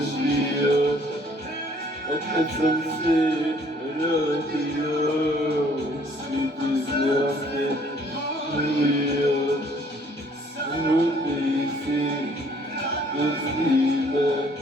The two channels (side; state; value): both; normal; correlation 0.60